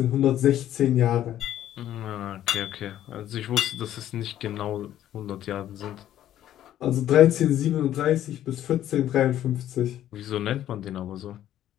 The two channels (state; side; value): quieter; right; 12.1 dB